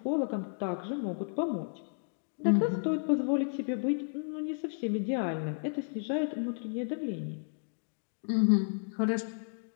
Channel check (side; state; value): right; silent; digital silence